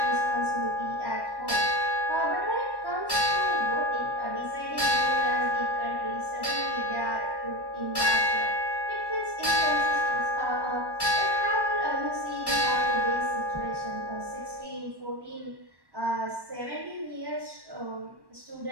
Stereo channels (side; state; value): left; late; 1.1 ms